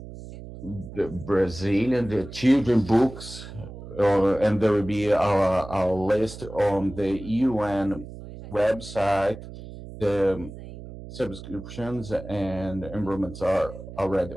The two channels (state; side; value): noise; right; hum, 13 dB below the sound